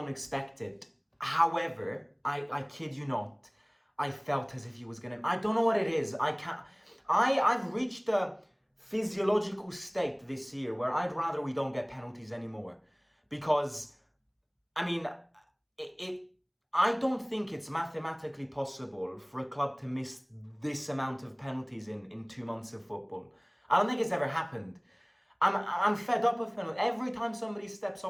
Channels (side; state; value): both; identical; correlation 1.00